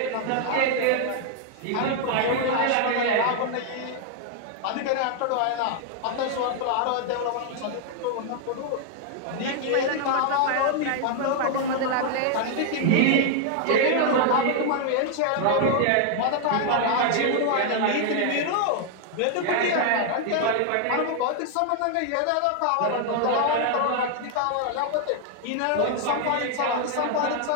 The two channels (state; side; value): different; both; correlation 0.00